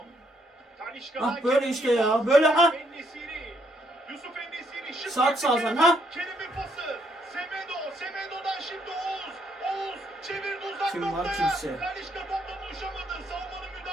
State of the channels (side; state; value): both; normal; correlation 0.72